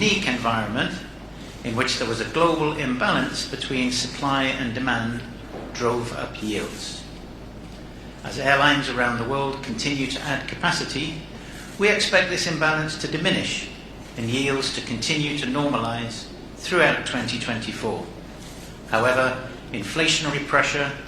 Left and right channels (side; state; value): both; identical; correlation 1.00